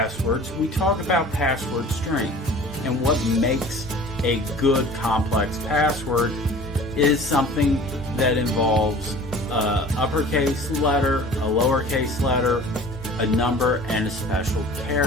we talk about password strength. And what makes a good complex password is something that involves an uppercase letter, a lowercase letter, a number, and a special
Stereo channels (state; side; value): normal; both; correlation 0.45